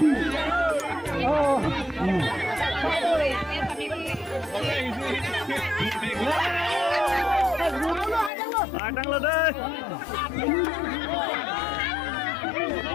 oh Adang lu deh.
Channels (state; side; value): drops out; right; at 8.3 s